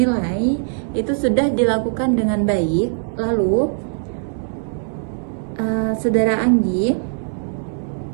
Itu sudah dilakukan dengan baik. Lalu Saudara Anggi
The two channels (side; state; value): left; silent; 65 dB below the other